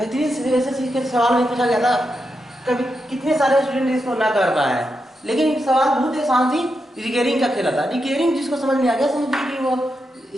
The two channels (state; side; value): normal; both; correlation 0.86